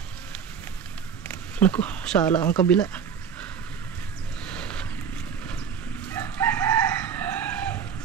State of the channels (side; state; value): left; quieter; 7.3 dB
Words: Naku, sala ang kabila.